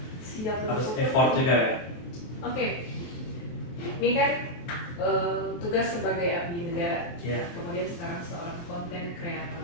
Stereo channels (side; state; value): right; late; 23 ms